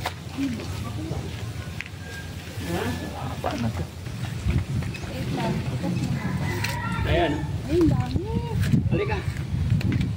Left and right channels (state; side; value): identical; both; correlation 1.00